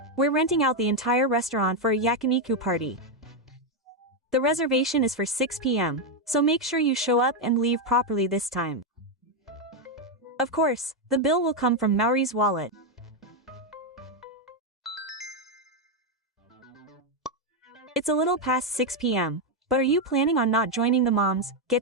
We're renting out the entire restaurant for a yakiniku party. The reservation is for 6 p.m., so make sure you show up and leave properly this time. Of course, the bill will come from Maori's wallet. It's a little past 6 p.m., but are you planning on not joining the moms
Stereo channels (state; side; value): normal; both; correlation 0.04